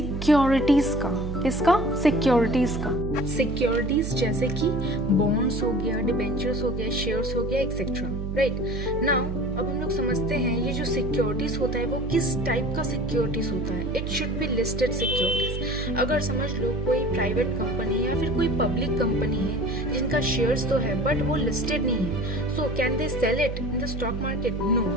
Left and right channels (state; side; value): noise; right; hum, 4 dB below the sound